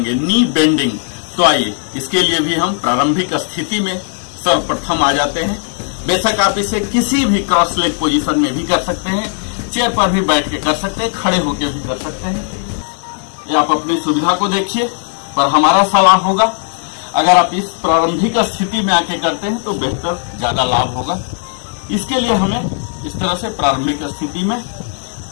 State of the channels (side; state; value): right; silent; digital silence